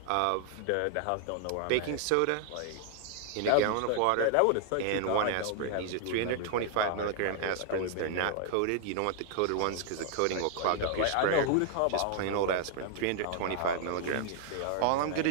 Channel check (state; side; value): different; both; correlation 0.00